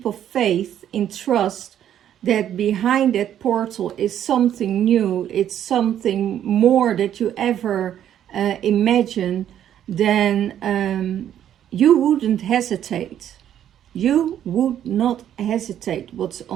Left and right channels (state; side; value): quieter; left; 10.5 dB